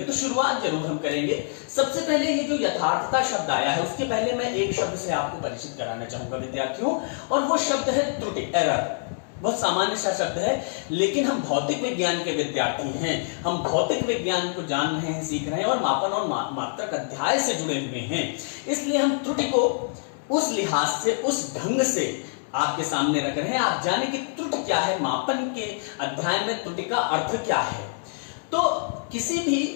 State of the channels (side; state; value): right; silent; 61 dB below the other